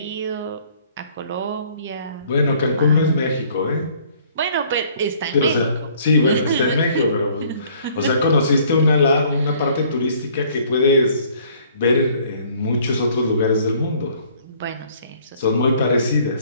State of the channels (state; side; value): inverted; both; correlation -0.58